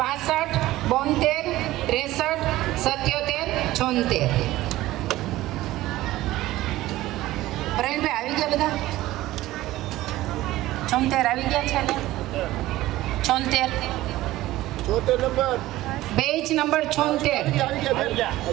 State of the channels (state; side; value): quieter; left; 16.5 dB